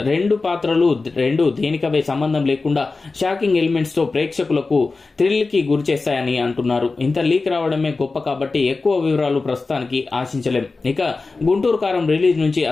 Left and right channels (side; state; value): right; quieter; 3.8 dB